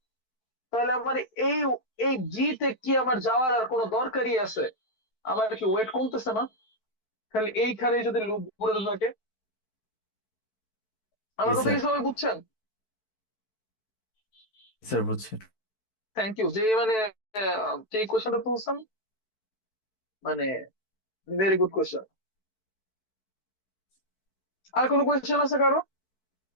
তাহলে আমার এই এই জি তে কি আমার যাওয়ার আর কোনো দরকারই আছে? আমার কি ওয়েট কমতেছে না? খালি এইখানে যদি লুপ ঘুরে থাকে। জি আমার কথা স্যার। কি সবাই বুঝছেন? স্যার বুঝছি। থ্যাংক ইউ যে মানে যে কোশ্চেনটা তুলছেন, মানে ভেরি গুড কোশ্চেন। আর কোনো কোয়েশ্চেন আছে কারো?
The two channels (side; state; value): right; late; 4.6 ms